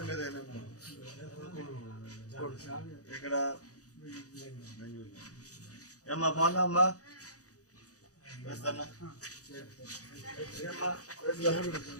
ఇక్కడ ఏమ్మా బాగున్నా అమ్మా వేస్తానా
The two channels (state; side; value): late; right; 0.67 ms